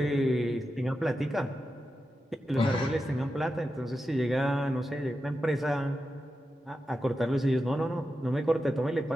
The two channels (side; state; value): both; normal; correlation 0.90